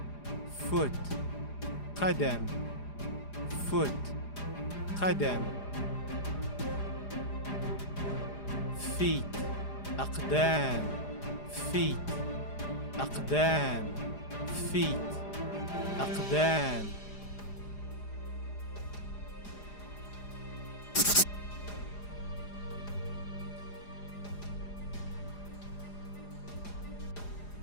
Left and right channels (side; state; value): right; late; 4.9 ms